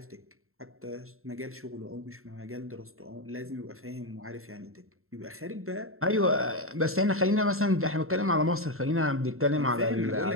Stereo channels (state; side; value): late; left; 0.62 ms